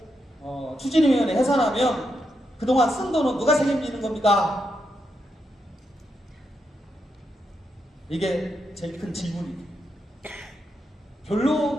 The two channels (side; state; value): both; normal; correlation 0.83